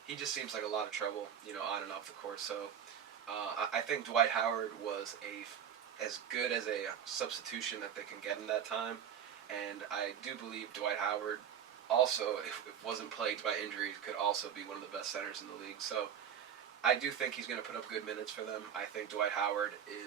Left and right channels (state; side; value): quieter; left; 8.7 dB